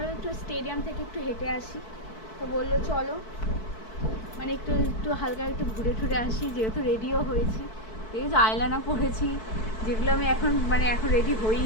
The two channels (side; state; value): right; late; 4.6 ms